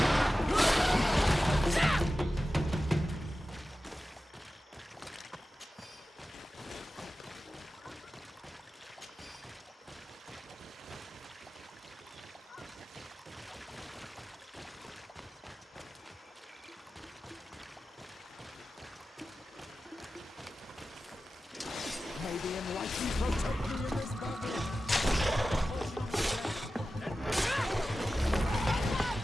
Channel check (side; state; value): both; normal; correlation 0.94